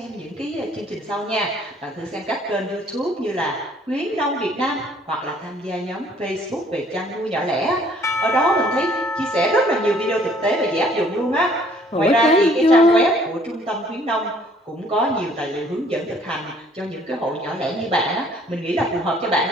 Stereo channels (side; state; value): both; normal; correlation 0.59